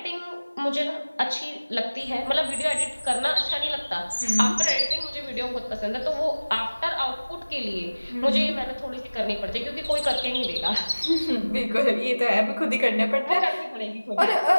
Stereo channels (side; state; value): both; inverted; correlation -1.00